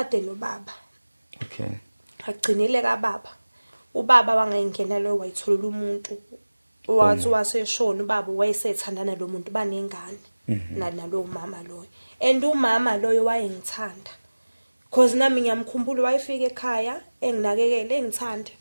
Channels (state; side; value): inverted; both; correlation -1.00